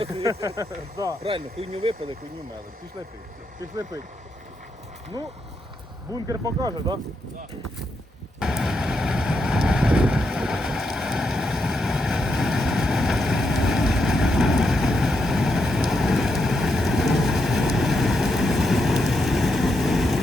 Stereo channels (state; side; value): normal; both; correlation 0.82